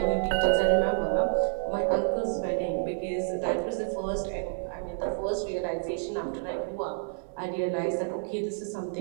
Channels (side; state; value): left; silent; 59 dB below the other